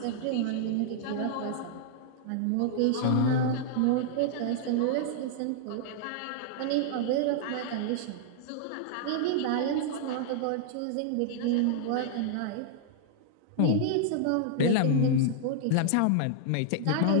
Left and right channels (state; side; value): different; both; correlation -0.01